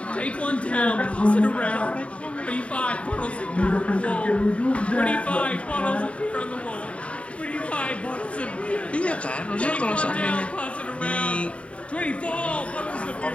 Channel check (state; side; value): late; right; 0.063 ms